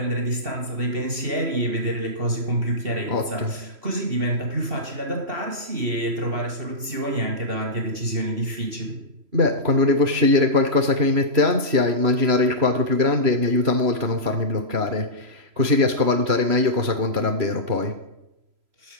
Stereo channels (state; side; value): late; left; 3.0 ms